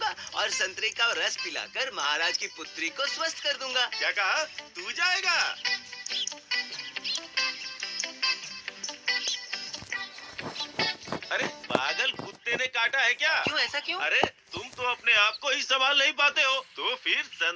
और संतरे का रस पिलाकर महाराज की पुत्री को स्वस्थ कर दूंगा। क्या कहा? तू जाएगा? अरे पागल कुत्ते कुत्ते ने काटा है क्या? क्यों ऐसा क्यों? अरे तुम तो अपने आप को ही संभाल नहीं पाते हो, तो फिर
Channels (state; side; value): identical; both; correlation 1.00